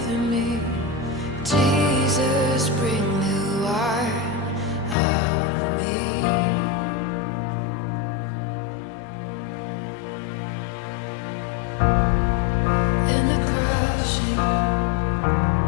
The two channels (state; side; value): drops out; right; at 5.0 s